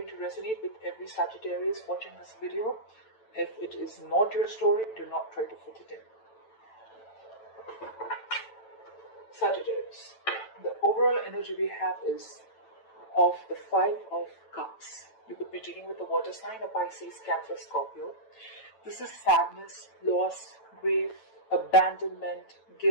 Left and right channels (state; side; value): late; right; 9.0 ms